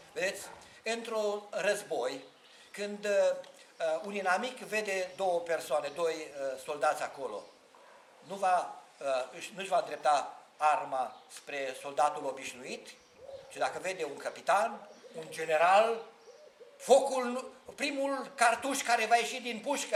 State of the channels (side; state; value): both; identical; correlation 1.00